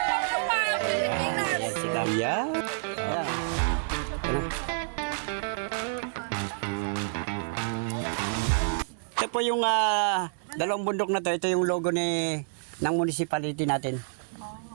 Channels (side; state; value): left; silent; digital silence